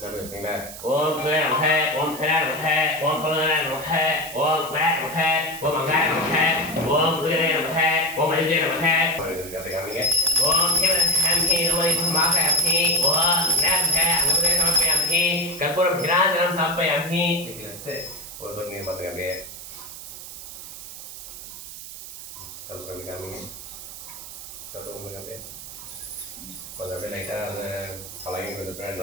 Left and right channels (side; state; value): right; noise; hiss, 12 dB below the sound